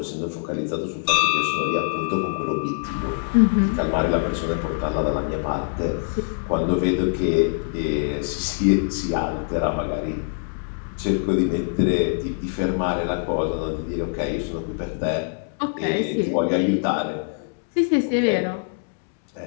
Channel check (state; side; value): silent; right; digital silence